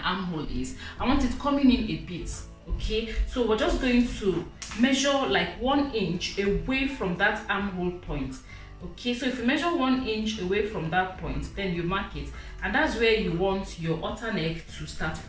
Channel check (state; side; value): identical; both; correlation 1.00